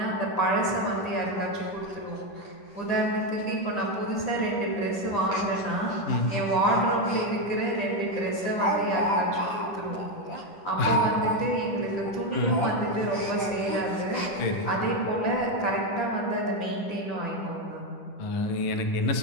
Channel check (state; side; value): late; right; 10 ms